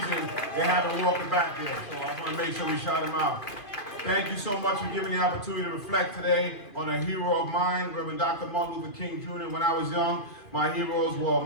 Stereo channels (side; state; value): right; late; 2.5 ms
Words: they haven't walked back there. So I want to make sure we shout them out. Thank you so much for giving me the opportunity to reflect today on a hero of mine, Reverend Dr. Martin Luther King Jr. When I was young, my heroes were